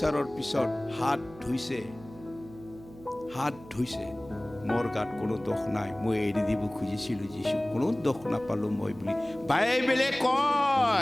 পিছত হাত ধুইছে। মোৰ গাত কোনো দোষ নাই, মই এৰি দিব খুজিছিলোঁ যীশু, কোনো দোষ নাপালোঁ মই বুলি বাইবেলে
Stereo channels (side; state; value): right; noise; hum, 19 dB below the sound